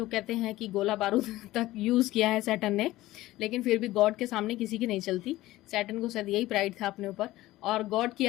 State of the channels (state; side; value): quieter; right; 16.8 dB